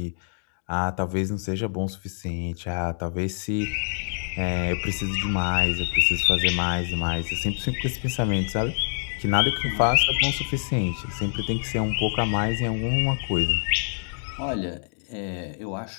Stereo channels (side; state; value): right; silent; digital silence